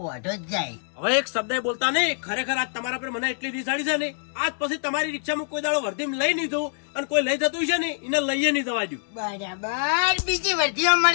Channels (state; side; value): silent; right; digital silence